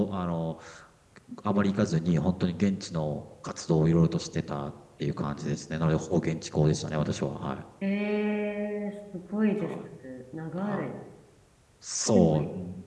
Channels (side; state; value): both; identical; correlation 1.00